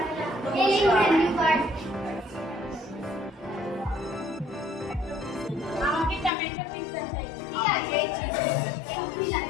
ये मेन्यू कार्ड। আমাকে টমেটো পিজ্জা চাই। ঠিক আছে,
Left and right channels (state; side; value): drops out; right; at 6.3 s